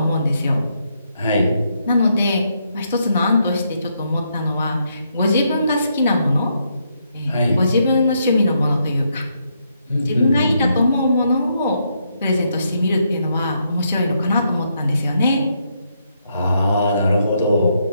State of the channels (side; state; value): both; inverted; correlation -0.77